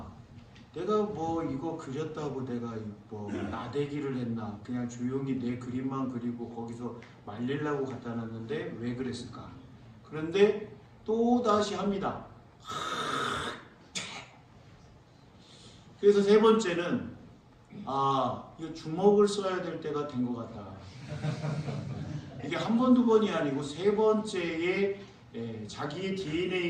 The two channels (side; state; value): both; identical; correlation 1.00